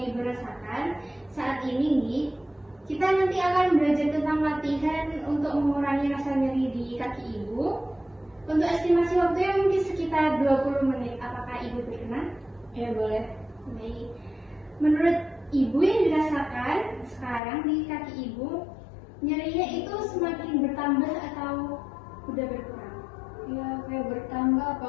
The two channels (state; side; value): drops out; right; at 17.4 s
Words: Ibu rasakan saat ini nih. Kita nanti akan belajar tentang latihan untuk mengurangi rasa nyeri di kaki Ibu. Untuk estimasi waktunya mungkin sekitar 20 menit. Apakah Ibu berkenan? Ya boleh. Baik. Menurut Ibu yang dirasakan sekarang di kaki Ibu, nyerinya itu semakin bertambah atau udah berkurang? Ya kayak bertambah,